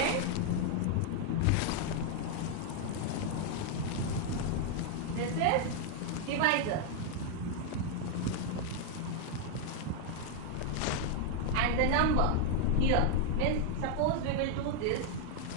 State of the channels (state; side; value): different; both; correlation 0.00